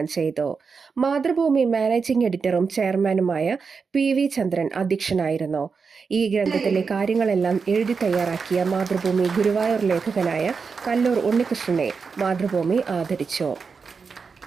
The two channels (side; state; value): left; quieter; 5.3 dB